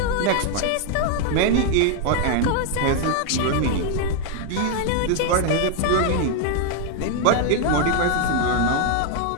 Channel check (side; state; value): both; different; correlation 0.00